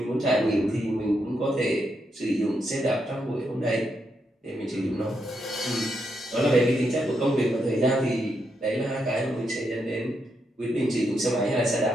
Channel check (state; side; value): normal; both; correlation 0.81